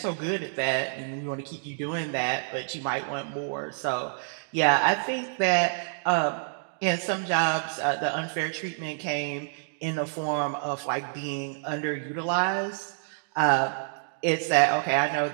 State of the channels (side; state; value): left; silent; digital silence